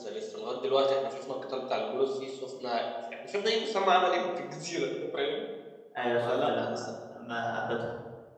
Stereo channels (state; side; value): identical; both; correlation 1.00